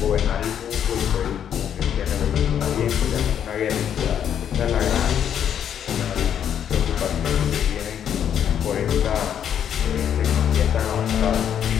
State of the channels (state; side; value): quieter; right; 9.1 dB